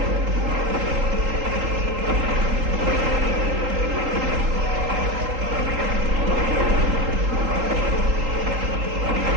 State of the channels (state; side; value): late; left; 3.8 ms